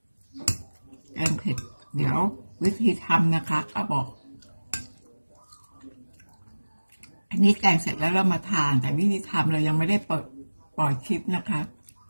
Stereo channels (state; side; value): inverted; both; correlation -1.00